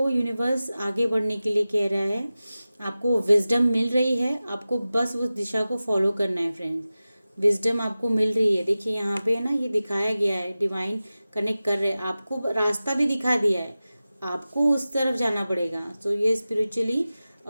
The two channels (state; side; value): inverted; both; correlation -0.96